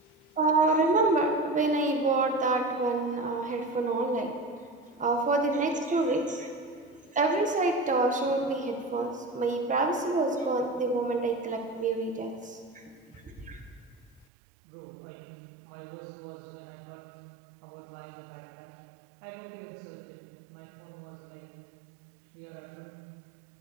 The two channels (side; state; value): left; drops out; at 14.2 s